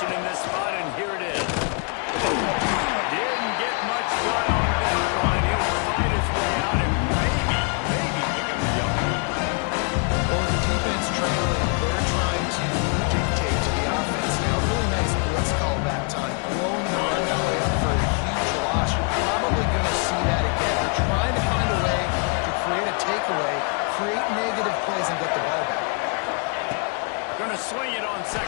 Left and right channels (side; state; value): right; quieter; 38.1 dB